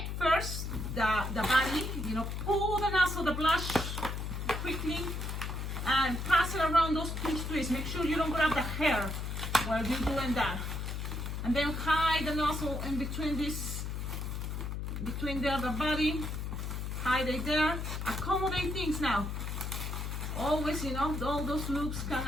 first the body, pull the nozzle, the blush quickly, and pass it around those pinch twists. Make sure you don't grab the hair while you're doing that. And then hide the nozzle in between the body, hide it there, accommodate things now. Always, all those loops can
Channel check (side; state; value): left; noise; hum, 4 dB below the sound